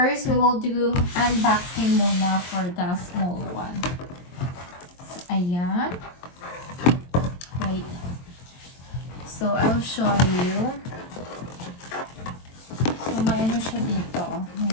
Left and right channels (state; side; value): late; right; 23 ms